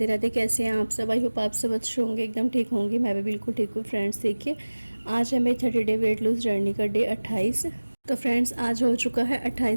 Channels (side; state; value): both; inverted; correlation -1.00